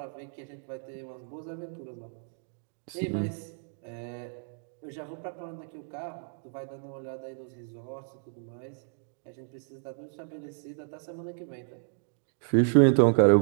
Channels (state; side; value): silent; left; digital silence